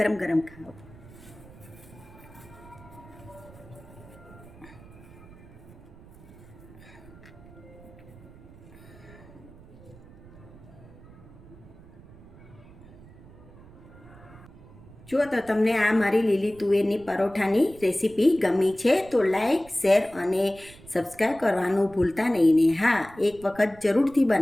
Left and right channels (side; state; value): right; noise; rumble, 20 dB below the sound